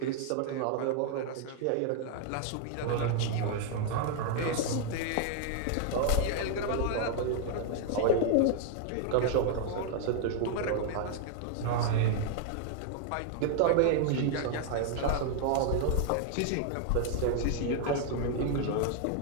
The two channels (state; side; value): different; both; correlation 0.00